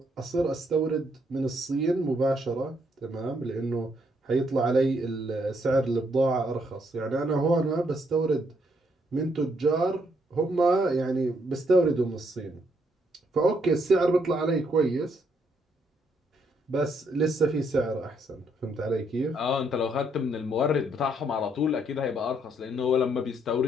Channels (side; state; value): both; normal; correlation 0.73